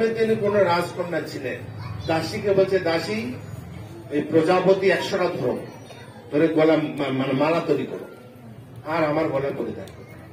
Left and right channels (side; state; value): both; identical; correlation 1.00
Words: তিনি কোন রাজকন্যা ছিলেন, দাসীকে বলছে দাসী এই প্রজাপতি 100টা ধরে গলা মানে মালা তৈরি করো, আর আমার গলায় পরিধান করো।